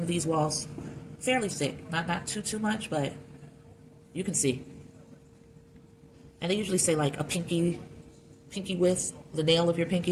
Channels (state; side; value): identical; both; correlation 1.00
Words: these walls fairly thick, not too much, but you can see. And they usually say like a pinky width, the nail of your